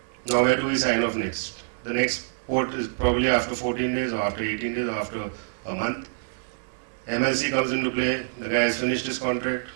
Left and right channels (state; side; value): silent; left; digital silence